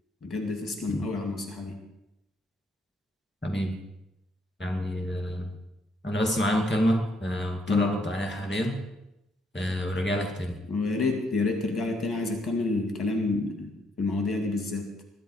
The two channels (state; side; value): normal; both; correlation 0.73